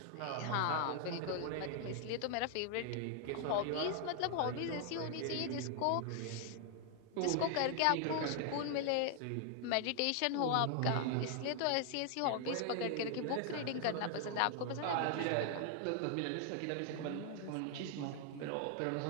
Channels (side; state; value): both; different; correlation 0.00